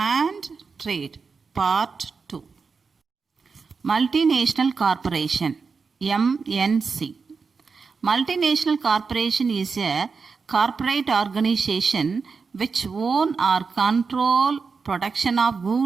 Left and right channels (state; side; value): quieter; left; 5.0 dB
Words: Trade, Part 2. Multinational Corporation, MNC. Multinational corporation is a corporate organization which own or control production of